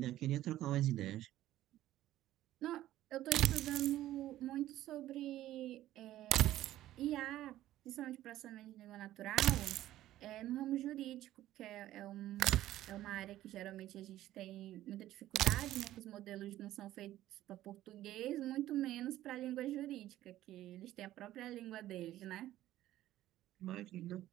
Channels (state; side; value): quieter; left; 14.1 dB